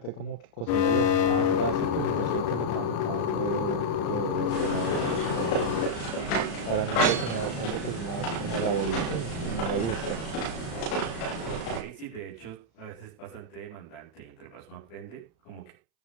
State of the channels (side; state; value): right; late; 35 ms